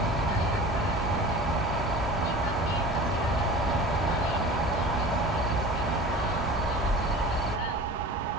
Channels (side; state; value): both; normal; correlation 0.38